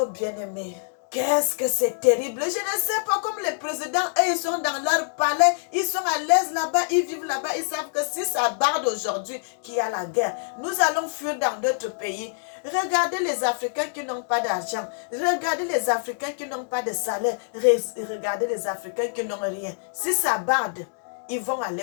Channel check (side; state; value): right; silent; digital silence